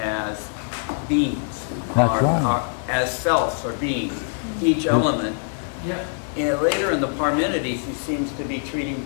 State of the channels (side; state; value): right; silent; digital silence